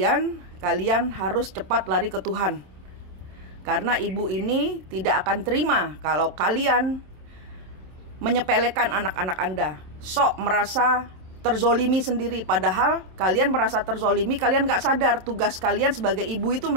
kalian harus cepat lari ke Tuhan. Karena ibu ini tidak akan terima kalau kalian menyepelekan anak-anak Anda. Sok merasa terzolimi sendiri, padahal kalian merasa terzolimi, kalian gak sadar tugas kalian sebagai ibu itu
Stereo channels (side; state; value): left; late; 27 ms